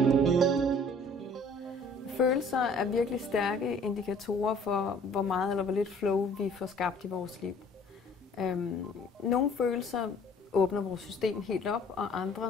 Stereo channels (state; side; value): normal; both; correlation 0.54